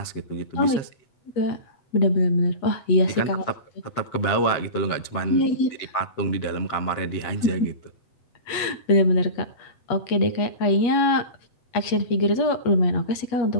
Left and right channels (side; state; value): right; late; 8.3 ms